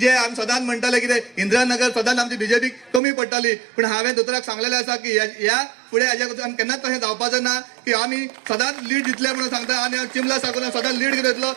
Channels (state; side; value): drops out; left; at 3.0 s